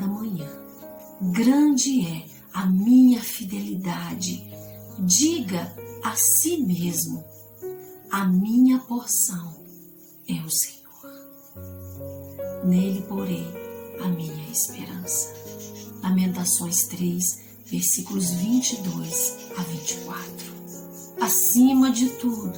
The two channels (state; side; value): identical; both; correlation 1.00